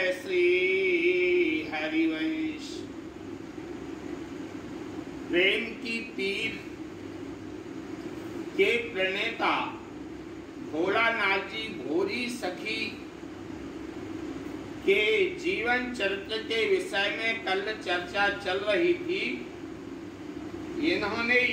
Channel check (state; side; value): identical; both; correlation 1.00